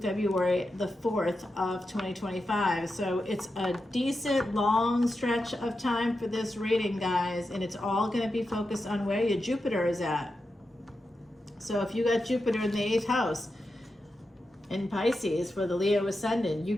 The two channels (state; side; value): normal; both; correlation 0.89